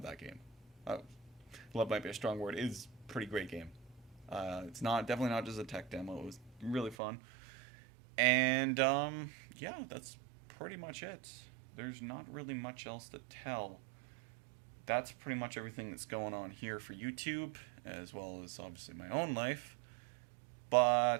that game. Love might be a strong word. It is a pretty great game. It's definitely not just a tech demo. It was really fun. And yeah, that's pretty much it. There's not really much else to tell. That's pretty much everything that's going on here for YouTube, as well as obviously my own life.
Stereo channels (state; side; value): drops out; left; at 7.0 s